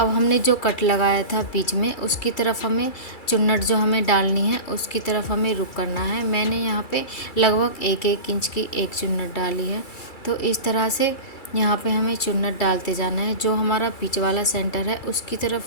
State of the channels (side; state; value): right; late; 2.3 ms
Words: हमने जो कट लगाया था बीच में, उसकी तरफ हमें चुन्नट जो हमें डालनी है उसकी तरफ हमें रुक करना है। मैंने यहाँ पे लगभग 1 इंच की एक चुन्नट डाली है। तो इस तरह से यहाँ पे हमें चुन्नट डालते जाना है। जो हमारा बीच वाला सेंटर है उसकी